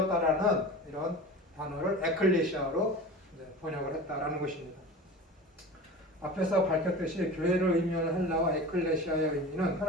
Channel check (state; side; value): normal; both; correlation 0.35